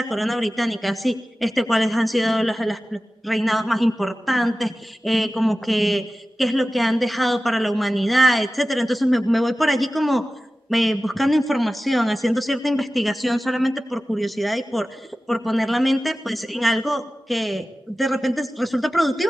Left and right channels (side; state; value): both; normal; correlation 0.95